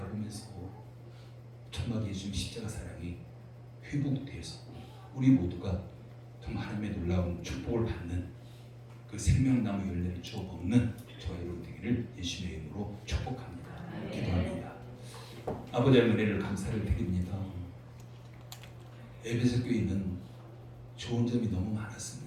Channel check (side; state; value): both; identical; correlation 1.00